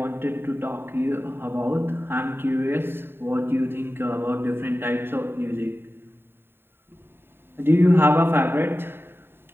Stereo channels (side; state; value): left; late; 0.11 ms